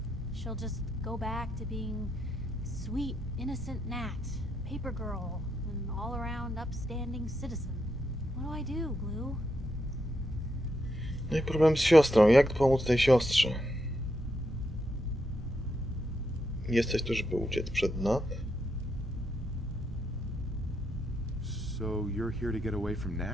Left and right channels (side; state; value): both; normal; correlation 0.81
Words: She'll just go back to being sweet, innocent Nat, paper girl, an all-around upstanding citizen. What do I do, Blue? No i problem z siostrą. Jak pomóc tej siostrze? Jesteś tu, żeby uciec przed Nat? So you're here to get away from